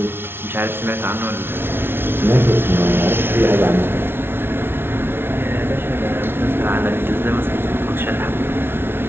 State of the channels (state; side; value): late; left; 0.11 ms